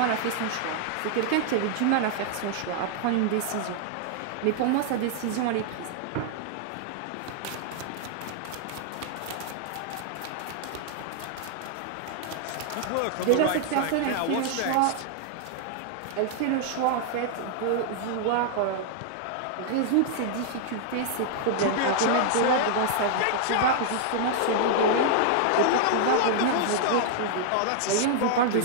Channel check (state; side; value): different; both; correlation -0.01